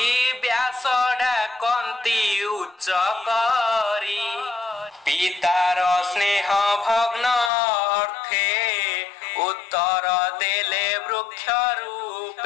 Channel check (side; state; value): right; drops out; at 7.5 s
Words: व्यास डाकन्ति उच्च करी। पितार स्नेह भग्न अर्थे उत्तर देले वृक्ष